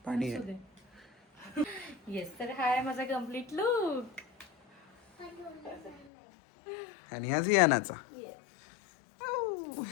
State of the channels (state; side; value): drops out; right; at 6.1 s